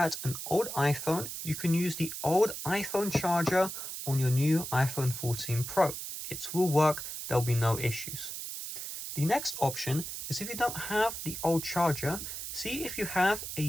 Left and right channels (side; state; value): right; noise; hiss, 7 dB below the sound